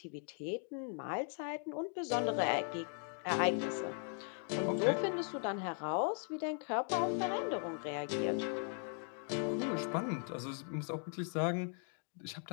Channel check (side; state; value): right; silent; 52 dB below the other